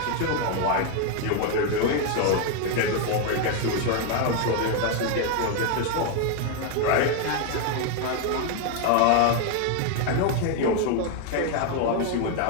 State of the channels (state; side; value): different; both; correlation 0.01